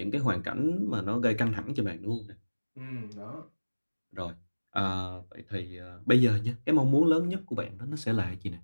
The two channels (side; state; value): both; inverted; correlation -1.00